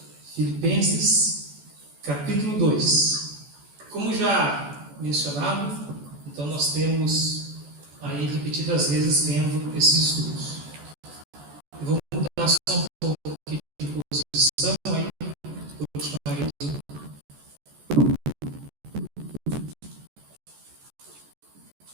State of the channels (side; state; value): left; late; 14 ms